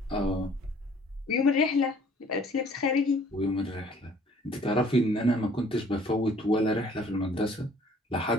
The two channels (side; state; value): both; normal; correlation 0.56